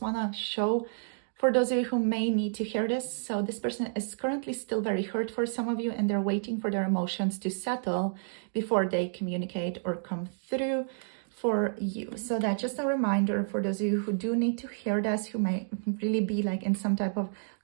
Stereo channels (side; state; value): left; silent; digital silence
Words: to show for those of you who may need to hear this. So this person is currently still very hurt for some of you, and they're waiting for their emotions to settle before they communicate or come through for you. So that's just a reminder for those of you who do need to hear this, who may really be like in some type of